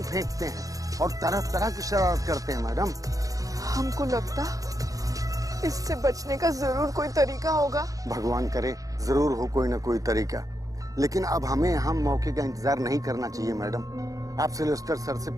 फेंकते हैं और तरह तरह की शरारत करते हैं। मैडम, हमको लगता इससे बचने का जरूर कोई तरीका होगा। भगवान करे जरूर हो कोई ना कोई तरीका। लेकिन अब हमें यहाँ मौके का इंतजार नहीं करना चाहिए। मैडम, आप सिल्वेस्टर सर से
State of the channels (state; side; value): late; left; 0.17 ms